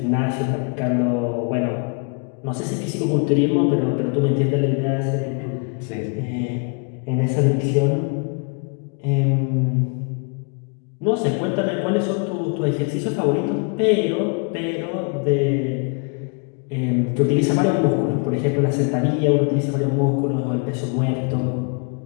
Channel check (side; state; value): right; quieter; 36.5 dB